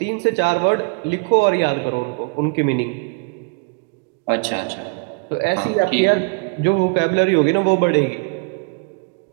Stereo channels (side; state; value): left; quieter; 33.8 dB